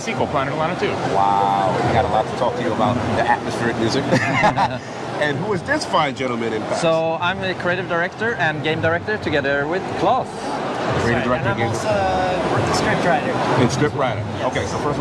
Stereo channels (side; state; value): both; identical; correlation 1.00